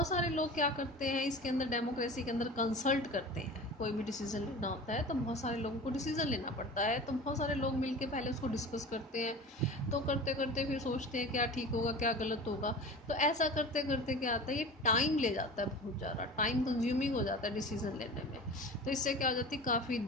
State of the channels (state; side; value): normal; both; correlation 0.35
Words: सारे लोग क्या करते हैं इसके अंदर, डेमोक्रेसी के अंदर कंसल्ट करते हैं। कोई भी डिसीजन लेना होता है तो बहुत सारे लोगों को डिसीजन लेना पड़ता है, तो बहुत सारे लोग मिलके पहले उसको डिस्कस करते हैं, तो करते करते फिर सोचते हैं क्या ठीक होगा क्या गलत होगा। तो ऐसा करते करते क्या आता है, ये टाइम ले जाता है, बहुत ज़्यादा टाइम कंज्यूमिंग हो जाता है डिसीजन लेने में। तो इससे क्या हो जाती है, काफ़ी